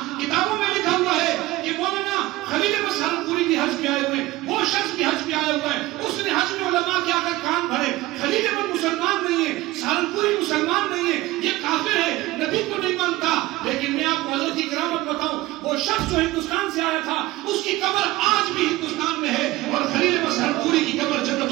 کتابوں میں لکھا ہوا ہے کہ مولانا خلیل احمد سہارنپوری بھی حج پہ آئے ہوئے، وہ شخص بھی حج پہ آیا ہوا ہے. اس نے حج میں علماء کے آ کر کان بھرے. خلیل احمد مسلمان نہیں ہے، سہارنپوری مسلمان نہیں ہے، یہ کافر ہے، نبی کو نہیں مانتا. لیکن میں آپ کو حضرت کی کرامت بتاؤں، وہ شخص جو ہندوستان سے آیا تھا اس کی قبر آج بھی ہندوستان میں ہے، اور خلیل احمد سہارنپوری کی قبر جنت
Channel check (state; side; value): quieter; left; 18.2 dB